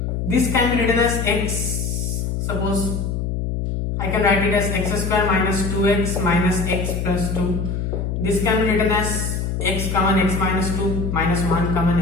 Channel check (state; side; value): noise; left; hum, 2 dB below the sound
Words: This can be written as x. Suppose I can write it as x square minus 2x minus x plus 2. This can be written as x common x minus 2 minus 1 common